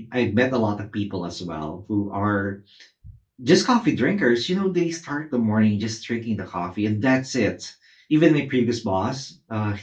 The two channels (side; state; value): both; identical; correlation 1.00